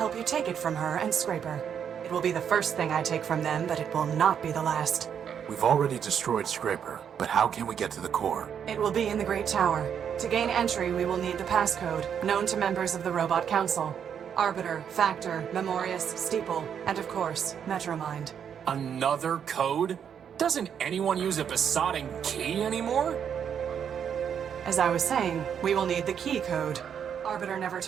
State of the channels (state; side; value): quieter; left; 8.1 dB